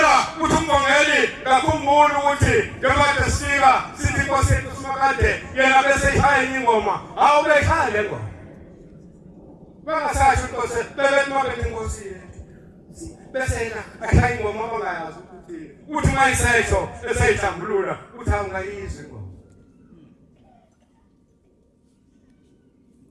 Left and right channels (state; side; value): identical; both; correlation 1.00